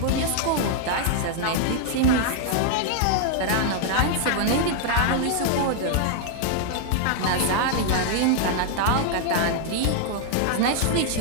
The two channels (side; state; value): both; different; correlation -0.01